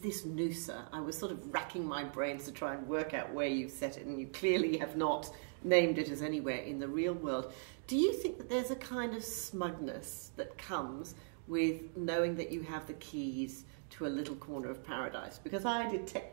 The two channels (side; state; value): left; silent; digital silence